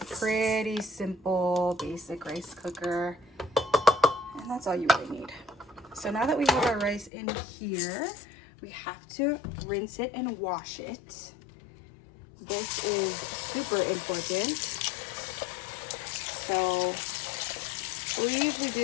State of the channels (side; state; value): right; drops out; at 7.1 s